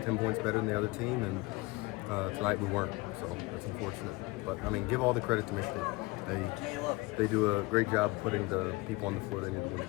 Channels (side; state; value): right; quieter; 23.0 dB